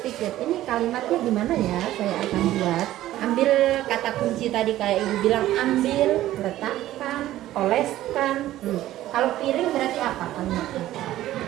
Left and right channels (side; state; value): left; quieter; 14.3 dB